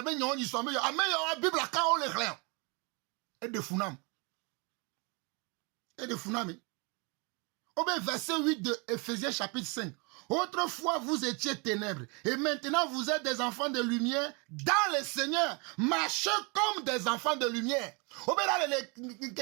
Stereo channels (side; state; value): left; quieter; 31.5 dB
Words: be nyon yi so me yo ameyo bible aka o le glen e de funam au verset 8 de Ephésiens chapitre 5. Autrefois vous étiez ténèbres et maintenant vous êtes des enfants de lumière dans le Seigneur. Marchez comme des enfants de lumière. Au là